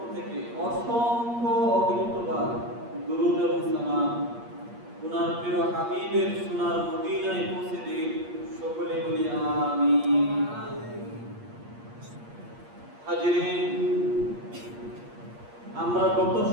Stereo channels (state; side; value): late; left; 8.5 ms